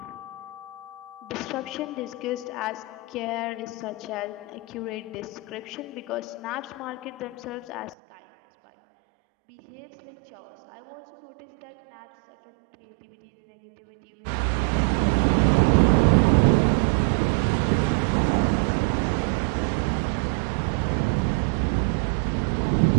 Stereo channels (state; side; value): drops out; left; at 8.0 s